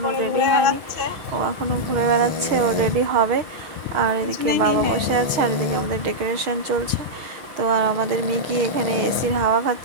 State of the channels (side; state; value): left; late; 6.4 ms